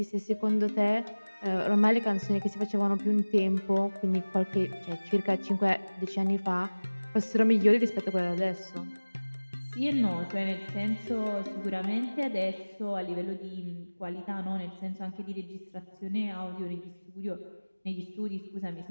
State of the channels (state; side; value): inverted; both; correlation -1.00